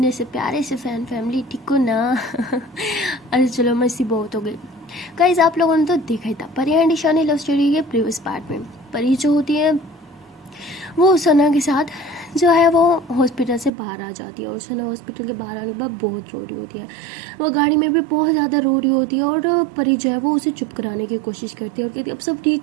से प्यारे से फैन फैमिली, ठीक हो ना? अरे चलो मस्ती बहुत हो गई गाइस। आप लोगों ने तो देखा ही था परी एंड ईशानी लव स्टोरी के प्रीवियस पार्ट में। परी जो होती है वो सना के साथ जो है वो हॉस्पिटल से बाहर आ जाती है और सना हॉस्पिटल के बाहर आने के बाद बहुत रो रही होती है। वो गाड़ी में भी बहुत ज़्यादा रो रही होती है और परी जो है वो उसे चुप कराने की कोशिश करती है और कहती है अब सब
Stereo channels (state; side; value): drops out; left; at 13.7 s